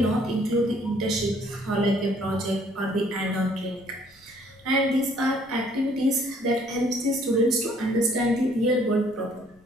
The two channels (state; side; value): noise; left; rumble, 30 dB below the sound